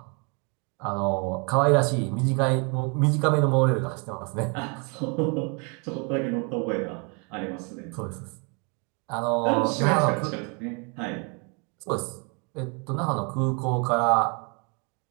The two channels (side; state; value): left; quieter; 34.1 dB